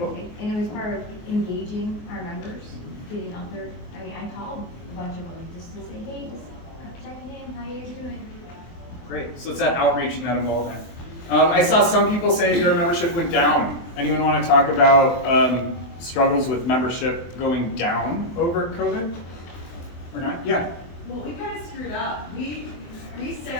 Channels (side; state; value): right; late; 24 ms